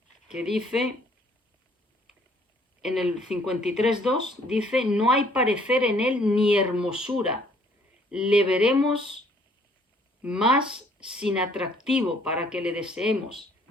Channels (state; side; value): normal; both; correlation 0.61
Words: que dice, en el 53:2, dice, no hay parecer en él ni hermosura, le veremos más sin atractivo para que le deseemos.